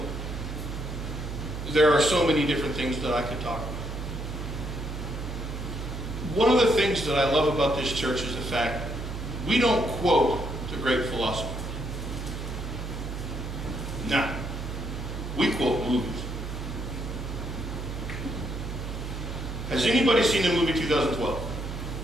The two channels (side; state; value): right; noise; hum, 6 dB below the sound